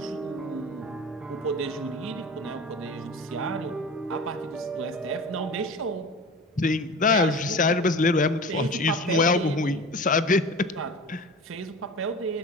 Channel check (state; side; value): normal; both; correlation 0.36